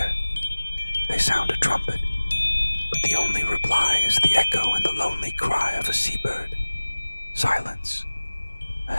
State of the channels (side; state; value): both; inverted; correlation -1.00